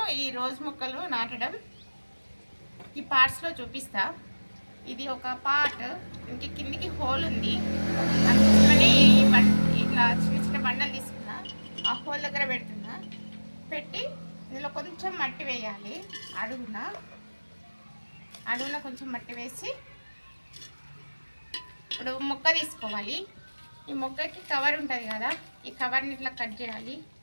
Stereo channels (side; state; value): both; inverted; correlation -1.00